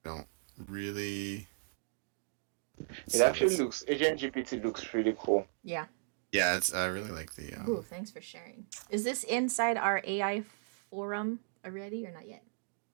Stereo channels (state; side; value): silent; left; digital silence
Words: don't really It actually looks. Agent GPT looks really cool. Yeah. yeah, it's I really like the Ooh, thanks for sharing. Is this inside our AI forum already or not yet?